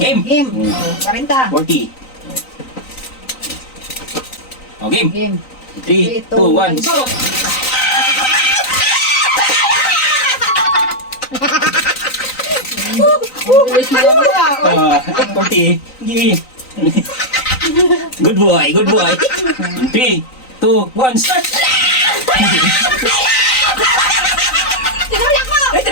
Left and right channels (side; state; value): right; late; 3.9 ms